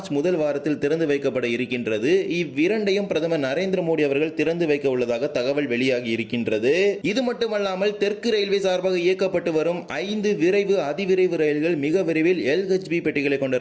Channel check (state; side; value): identical; both; correlation 1.00